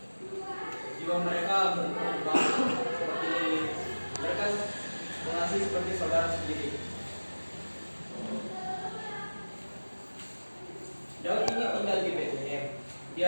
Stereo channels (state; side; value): inverted; both; correlation -1.00